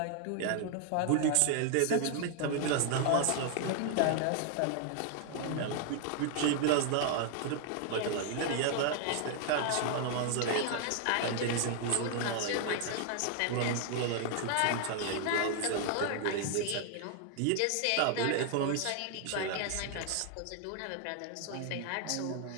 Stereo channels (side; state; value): both; different; correlation 0.00